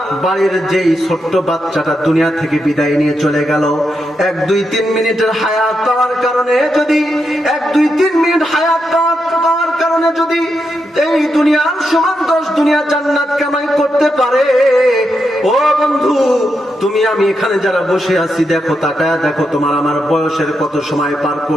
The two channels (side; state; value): both; normal; correlation 0.84